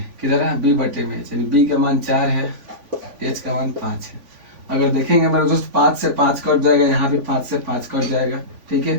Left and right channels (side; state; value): left; late; 3.5 ms